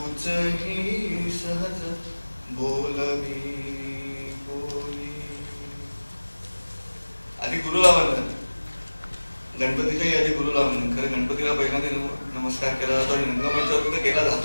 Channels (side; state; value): both; inverted; correlation -1.00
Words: ही सहज बोलवी बोली. आधी गुरुला वंदन, गणपतीच्याही आधी गुरुला वंदन. खरं गणपतीला पहिल्यांदा नमस्कार केला जातो आणि रंगमंचावर तर केला